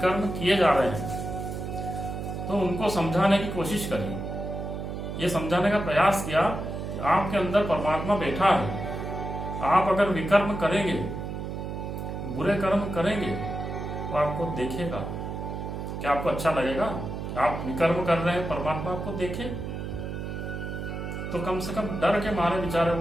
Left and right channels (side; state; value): right; noise; hum, 6 dB below the sound